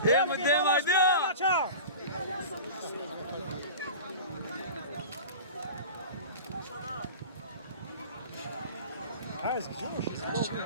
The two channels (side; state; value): both; inverted; correlation -0.35